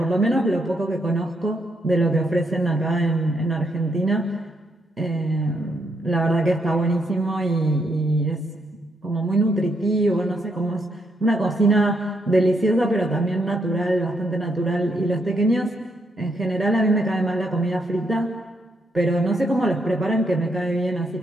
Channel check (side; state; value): both; normal; correlation 0.77